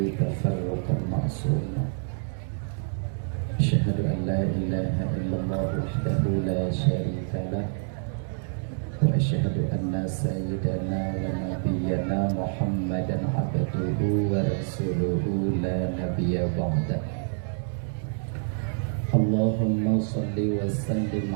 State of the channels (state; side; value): silent; left; digital silence